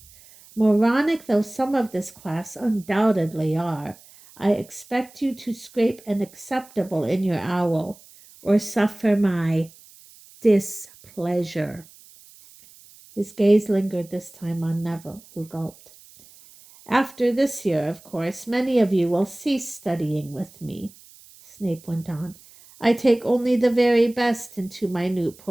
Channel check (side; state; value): right; noise; hiss, 24 dB below the sound